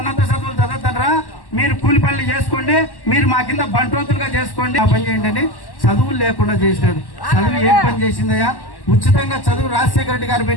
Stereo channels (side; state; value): right; late; 1.1 ms